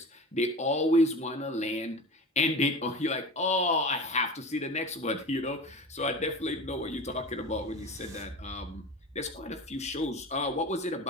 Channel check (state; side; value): normal; both; correlation 0.32